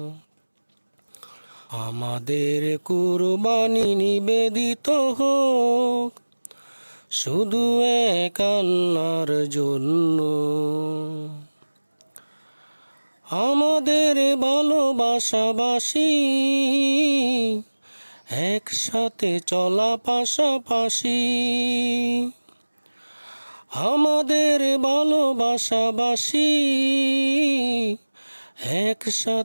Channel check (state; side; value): inverted; both; correlation -1.00